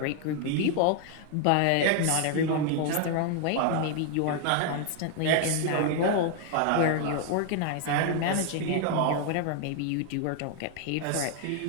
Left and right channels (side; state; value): both; different; correlation 0.00